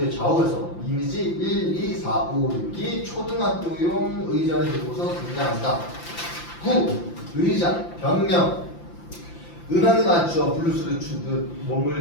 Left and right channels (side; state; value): right; late; 5.8 ms